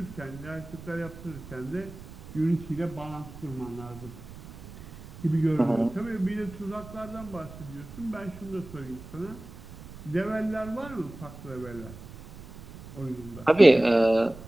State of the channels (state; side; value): noise; right; rumble, 16 dB below the sound